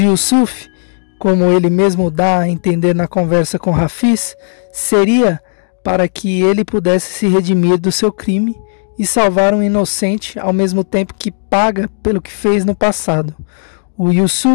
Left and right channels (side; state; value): right; silent; digital silence